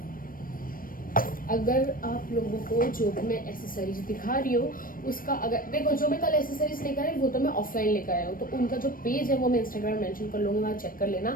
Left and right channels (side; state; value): right; late; 0.41 ms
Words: अगर आप लोगों को जो भी मैं एसेसरीज दिखा रही हूँ उसका, अगर देखो जो मैं कल एसेसरीज लेकर आई वो तो मैं ऑफलाइन लेकर आया हूँ, तो उनका जो पेज है वो मैं इंस्टाग्राम मेंशन कर लूँगी, वहाँ चेक कर लेना।